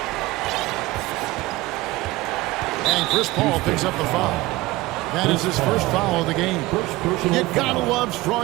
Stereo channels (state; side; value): quieter; left; 19.5 dB